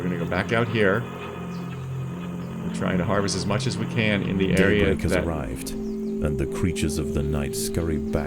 back out here. We're trying to harvest as much as we can in the area Daybreak has that... arrived, and the creatures of the night scurry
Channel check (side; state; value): both; identical; correlation 1.00